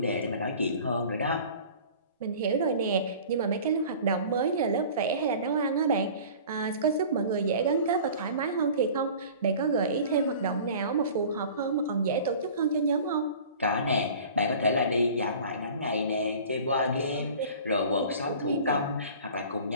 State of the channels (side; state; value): both; inverted; correlation -0.43